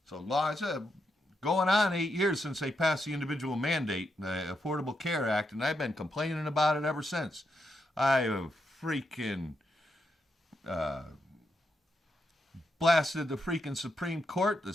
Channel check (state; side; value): normal; both; correlation 0.82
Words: So law, it's going on 8 years since they passed the individual mandate, the Affordable Care Act, and I've been complaining about it ever since. I have freaking blasted the freaking Supreme Court,